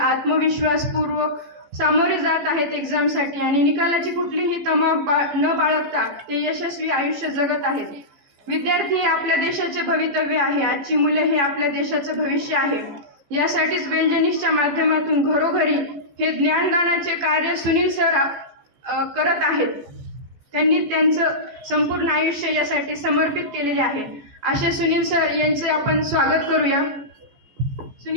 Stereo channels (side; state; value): left; late; 14 ms